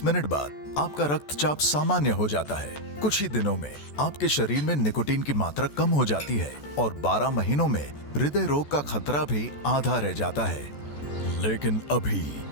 मिनट बाद आपका रक्तचाप सामान्य हो जाता है। कुछ ही दिनों में आपके शरीर में निकोटीन की मात्रा कम हो जाती है और 12 महीनों में हृदय रोग का खतरा भी आधा रह जाता है। लेकिन अभी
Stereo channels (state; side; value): late; right; 14 ms